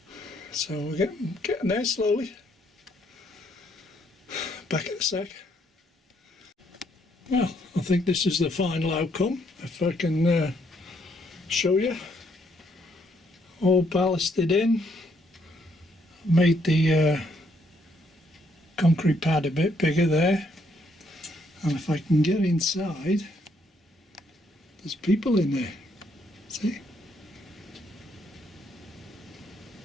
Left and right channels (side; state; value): both; normal; correlation 0.71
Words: so we're getting there slowly. Back in a sec. Well, I think this is the final outcome, if I can show you. All ballasted in, made the concrete pad a bit bigger there. And if I can get inside, there's people in there. See?